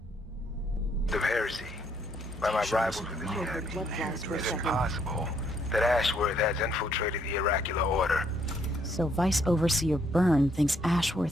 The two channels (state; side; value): normal; both; correlation 0.70